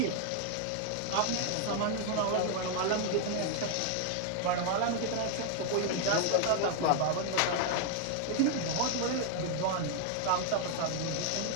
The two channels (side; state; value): both; different; correlation 0.00